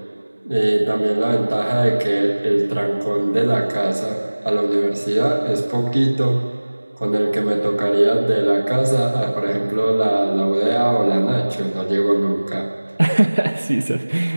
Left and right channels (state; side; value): inverted; both; correlation -1.00